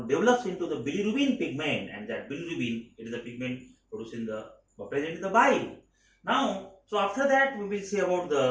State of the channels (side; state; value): both; identical; correlation 1.00